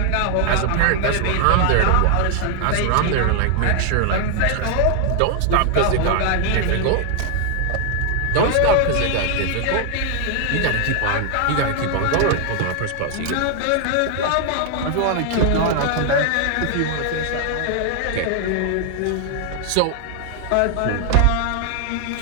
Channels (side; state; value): both; different; correlation 0.00